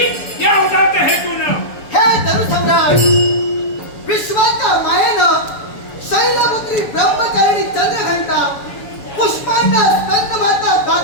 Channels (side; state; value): right; late; 7.0 ms